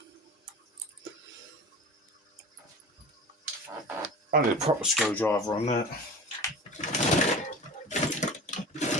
I need a proper screwdriver on that.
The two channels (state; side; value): normal; both; correlation 0.35